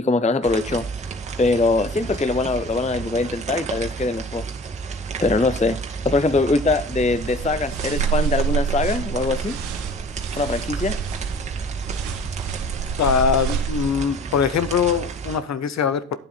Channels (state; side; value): normal; both; correlation 0.45